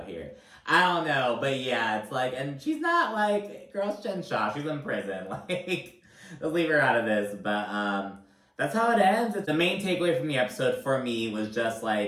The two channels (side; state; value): both; identical; correlation 1.00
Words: here. I don't know, but yeah, it's like, and she's not like, girl's Jen Shaw, she's in prison, like, let's leave her out of this, but, that's how it ends. The main takeaway from the episode for me was just,